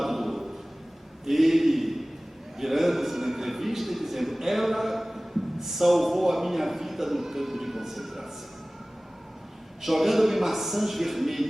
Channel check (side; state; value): both; normal; correlation 0.98